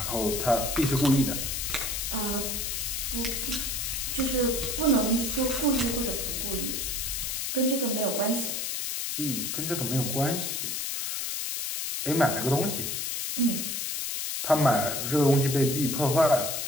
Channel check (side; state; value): left; noise; hiss, 2 dB below the sound